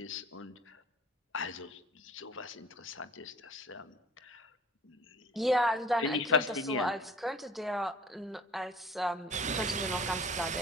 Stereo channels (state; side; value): normal; both; correlation 0.48